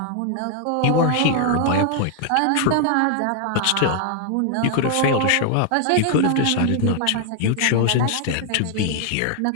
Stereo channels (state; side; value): different; both; correlation 0.00